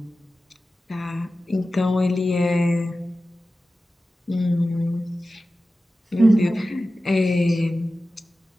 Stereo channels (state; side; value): normal; both; correlation 0.94